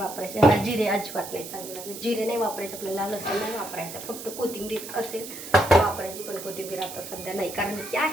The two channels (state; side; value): noise; right; hiss, 11 dB below the sound